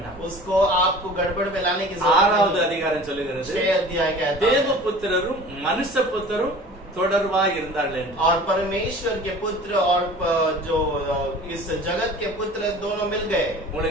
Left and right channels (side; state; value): both; normal; correlation 0.43